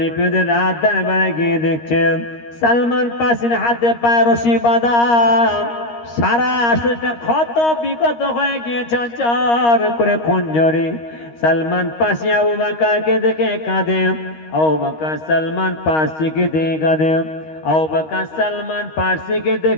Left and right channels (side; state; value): right; late; 13 ms